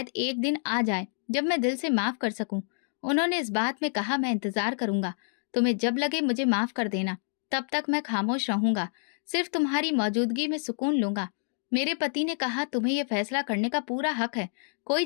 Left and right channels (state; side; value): silent; right; digital silence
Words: एक दिन आ जाए जब मैं दिल से माफ कर सकूं। उन्होंने इस बात में कहा, मैं इंतजार करूंगा। तुम्हें जब लगे मुझे माफ कर देना, तब तक मैं खामोश रहूंगा, सिर्फ तुम्हारी मौजूदगी में सुकून लूंगा। मेरे पति ने कहा, तुम्हें यह फैसला करने का पूरा हक है, कोई